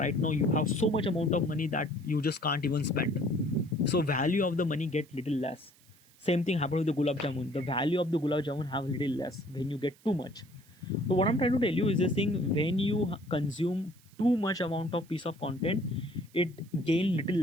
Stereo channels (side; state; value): right; noise; hiss, 28 dB below the sound